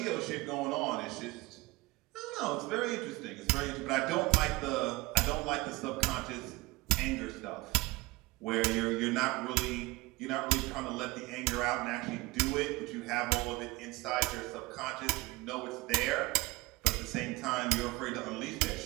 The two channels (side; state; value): left; quieter; 21.8 dB